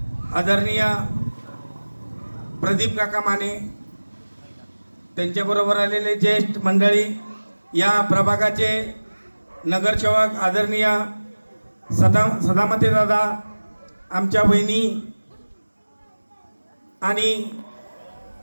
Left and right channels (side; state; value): both; inverted; correlation -1.00